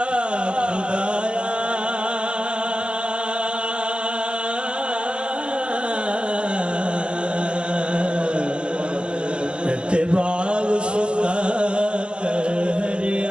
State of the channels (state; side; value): late; left; 0.055 ms